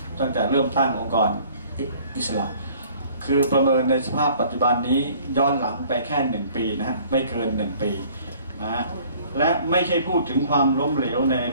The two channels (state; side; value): inverted; both; correlation -0.54